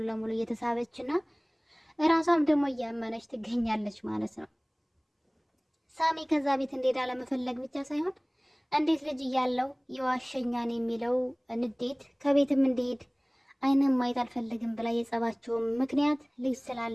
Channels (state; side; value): identical; both; correlation 1.00